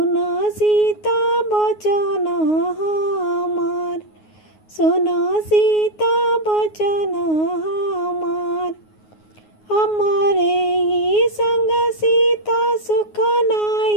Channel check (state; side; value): late; right; 9.5 ms